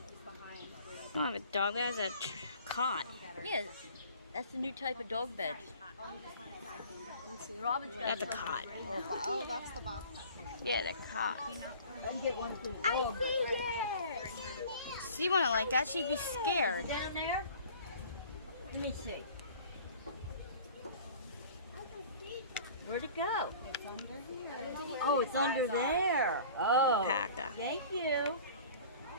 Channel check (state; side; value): inverted; both; correlation -0.45